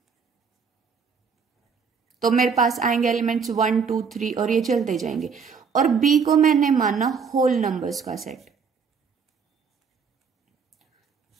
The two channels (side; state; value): left; quieter; 5.9 dB